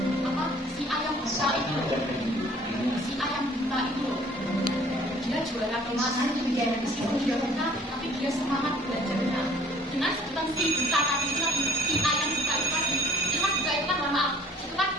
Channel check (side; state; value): both; normal; correlation 0.55